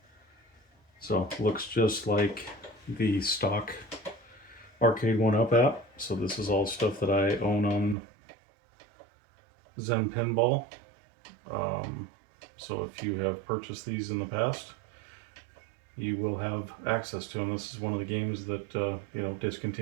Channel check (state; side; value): drops out; left; at 8.0 s